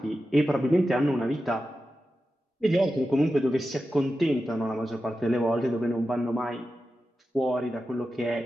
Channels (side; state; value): both; normal; correlation 0.92